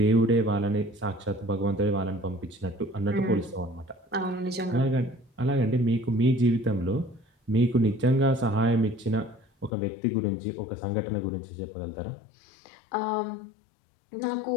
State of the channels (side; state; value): right; drops out; at 9.7 s